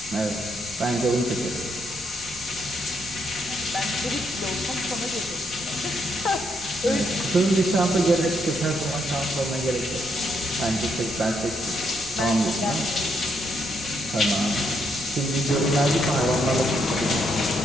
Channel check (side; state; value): both; normal; correlation 0.76